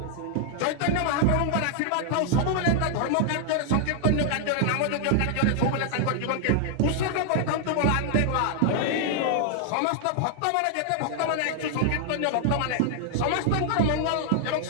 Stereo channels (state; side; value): different; both; correlation -0.01